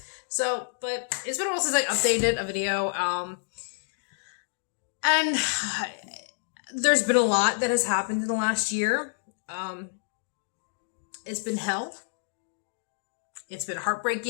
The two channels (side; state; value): right; silent; digital silence